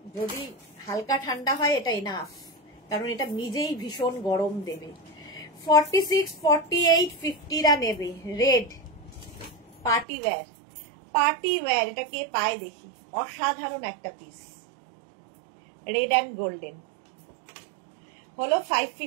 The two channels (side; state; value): left; drops out; at 10.1 s